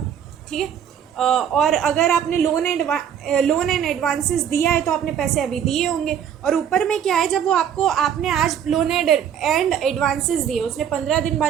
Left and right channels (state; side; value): quieter; left; 8.9 dB